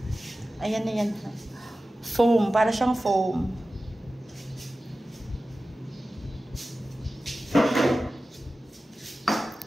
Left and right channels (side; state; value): both; normal; correlation 0.95